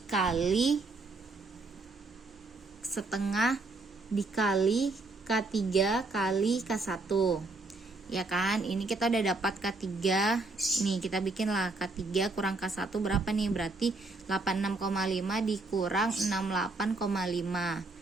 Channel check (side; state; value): left; quieter; 3.4 dB